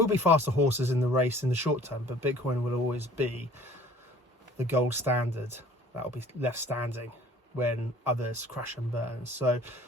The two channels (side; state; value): both; normal; correlation 0.51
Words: be faster horses in the race in the short term, but Bitcoin will always be the gold standard that will be left standing when others crash and burn. So